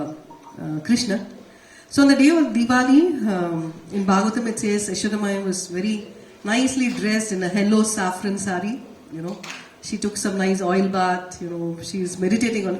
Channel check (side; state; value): both; identical; correlation 1.00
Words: Krishna. So on the day of Diwali, in Bhagavatam it says Yashoda was very nicely dressed in a yellow saffron sari. She took some nice oil bath, she's meditating on